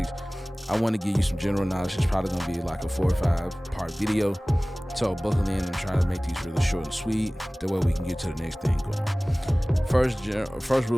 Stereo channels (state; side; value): normal; both; correlation 0.98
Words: give you some general knowledge. It's probably going to be like a 4 or 5 part video. So buckle in and try to make these really short and sweet. That way we can get to the next thing going. First